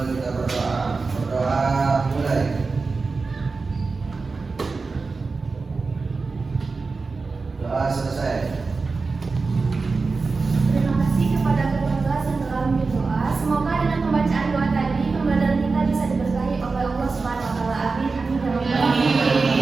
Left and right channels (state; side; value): quieter; left; 4.2 dB